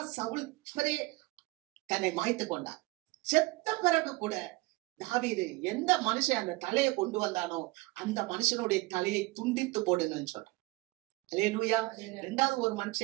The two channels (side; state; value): left; quieter; 22.4 dB